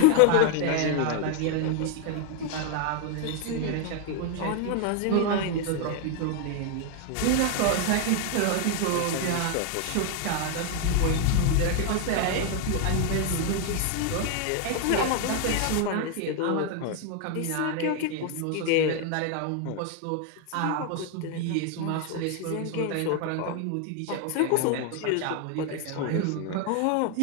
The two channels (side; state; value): both; different; correlation 0.01